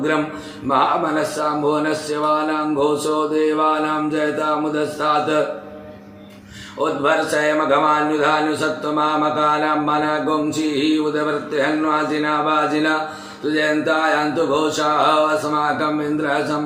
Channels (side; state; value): both; identical; correlation 1.00